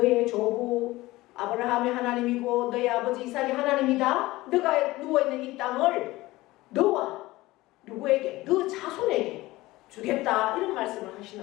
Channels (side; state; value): right; quieter; 18.9 dB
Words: 조부 아브라함의 하나님이고 너의 아버지 이삭의 하나님이다. 너가 누워있는 이 땅을 너와 누구에게? 너 자손에게 주겠다. 이런 말씀을